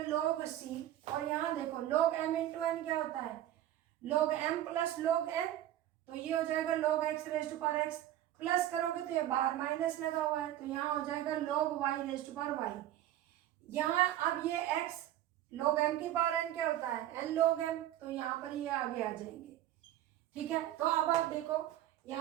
लॉग सी, और यहाँ देखो लॉग एम इंटू एन क्या होता है, log m plus log n, तो ये हो जाएगा log x raise to power x, plus करोगे तो ये बाहर माइनस लगा हुआ है, तो यहाँ हो जाएगा log y raise to power y। यहाँ अब ये x log m की पावर n क्या होता है, n log m, तो यहाँ पर ये आगे आ जाएंगे, ठीक है। तो अब आप देखो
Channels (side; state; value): left; quieter; 13.0 dB